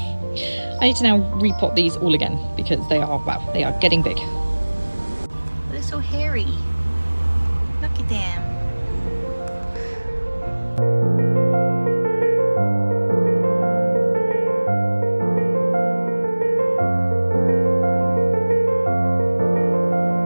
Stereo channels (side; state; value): both; inverted; correlation -1.00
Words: now repot these all again because they are, wow, they are getting big. They're so hairy. Look at them.